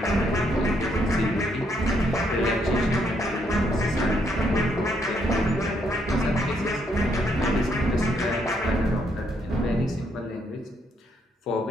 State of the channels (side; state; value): both; normal; correlation 0.73